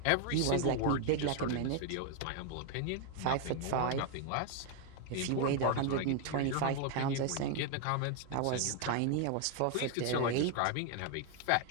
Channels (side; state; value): both; different; correlation 0.00